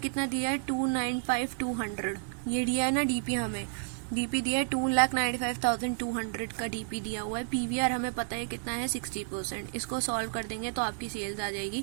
कितना दिया है 295,200, ये दिया है ना DP हमें, DP दिया है 2,95,200 का DP दिया हुआ है। PVR हमें पता है कितना है 60%, इसको सॉल्व कर देंगे तो आपकी सेल्स आ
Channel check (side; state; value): left; silent; 57 dB below the other